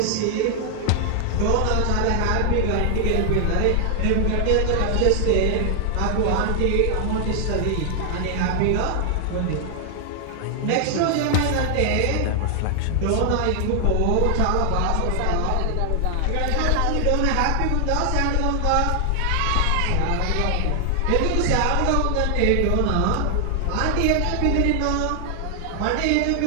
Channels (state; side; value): different; both; correlation 0.00